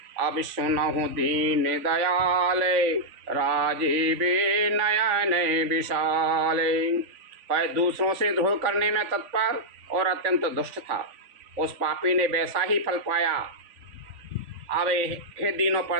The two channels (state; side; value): late; left; 3.5 ms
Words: अब सुनहु दीन दयाले, राजीवे नयन विशाले। वह दूसरों से द्रोह करने में तत्पर और अत्यंत दुष्ट था। उस पापी ने वैसा ही फल पाया। अब हे दीनों